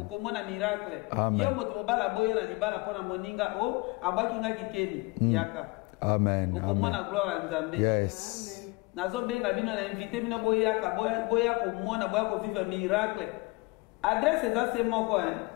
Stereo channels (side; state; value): right; quieter; 25.3 dB